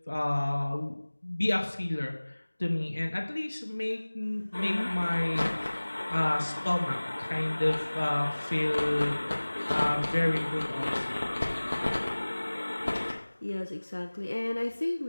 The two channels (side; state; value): both; inverted; correlation -1.00